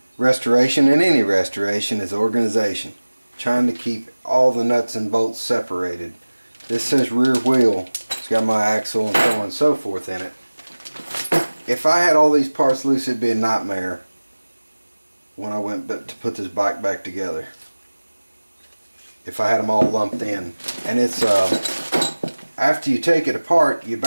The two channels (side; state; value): both; inverted; correlation -1.00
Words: restoration, and any restoration, is organization. Trying to keep all the nuts and bolts separated. This says rear wheel. It's got my axle and so on and so forth in it. If I had all these parts loose, it'd be a nightmare when I went to put this bike back together. If I had them all lumped in. And it's after you take it apart, you